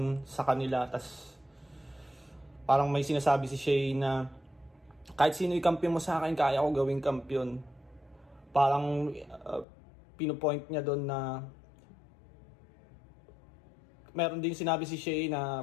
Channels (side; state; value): right; drops out; at 9.7 s